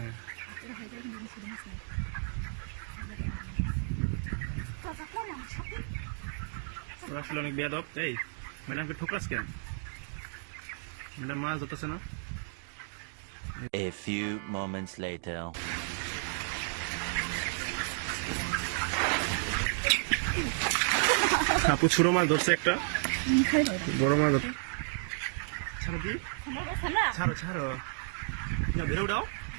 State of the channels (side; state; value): left; silent; 56 dB below the other